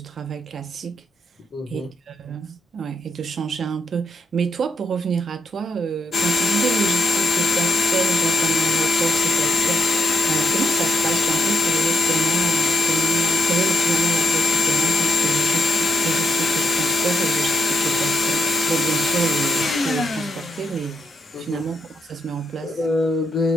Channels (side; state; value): both; normal; correlation 0.78